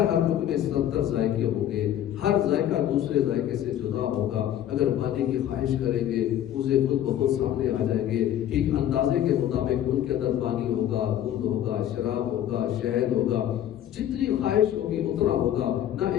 لقمے میں 70 ذائقے ہوں گے. ہر ذائقہ دوسرے ذائقے سے جدا ہوگا. اگر پانی کی خواہش کریں گے اسے خود بخود سامنے آ جائیں گے. ٹھیک اندازے کے مطابق ان کے اندر پانی ہوگا، دودھ ہوگا، شراب ہوگا، شہد ہوگا. جتنی خواہش ہوگی اتنا ہوگا. نہ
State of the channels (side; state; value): right; quieter; 11.3 dB